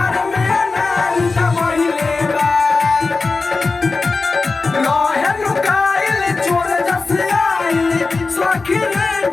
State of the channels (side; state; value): right; quieter; 4.0 dB